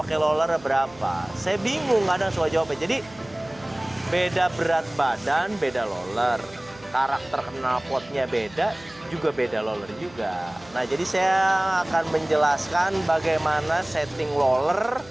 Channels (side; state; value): right; noise; hum, 23 dB below the sound